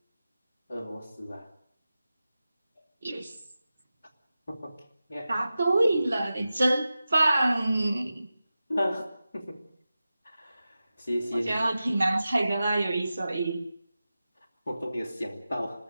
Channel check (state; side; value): inverted; both; correlation -0.94